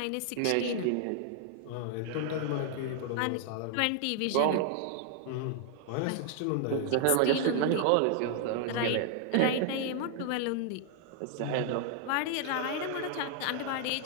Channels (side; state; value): both; different; correlation 0.00